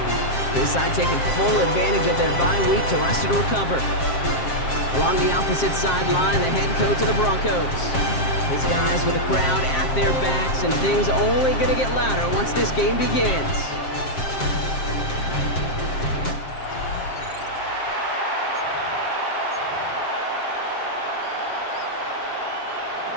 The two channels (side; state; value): right; late; 7.5 ms